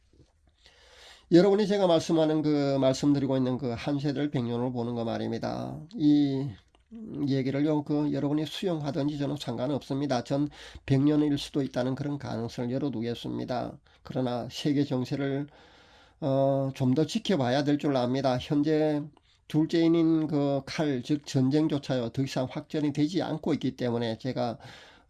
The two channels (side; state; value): both; identical; correlation 1.00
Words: 여러분이 제가 말씀드리고 있는 그 한 세대를 100년으로 보는 거 말입니다. 이 얘기를요, 여러분이 수용하든지 저는 상관없습니다. 전 100년일 수도 있다는 그런 가능성을 열어두겠습니다. 그러나 세계 정세를 좀 더 지켜봐야 될 줄 압니다. 현재 둘째인인 그 즉 전쟁조차요 더 이상 확전이 되지 않고 있기 때문에 제가